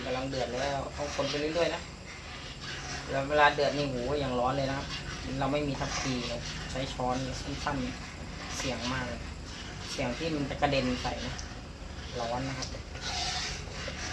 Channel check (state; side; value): identical; both; correlation 1.00